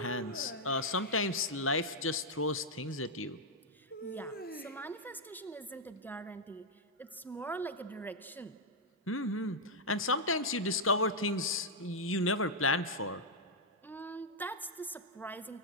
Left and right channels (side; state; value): both; normal; correlation -0.02